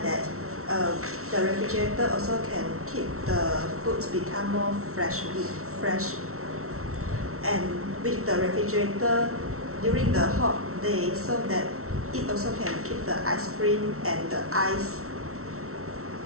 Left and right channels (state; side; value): late; left; 0.63 ms